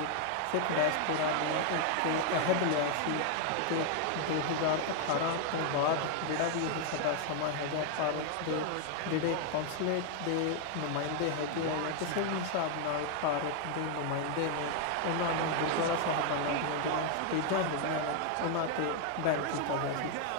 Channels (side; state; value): both; different; correlation 0.00